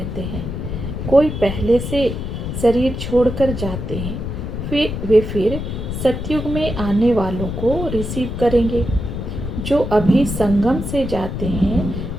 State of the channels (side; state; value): left; noise; rumble, 5 dB below the sound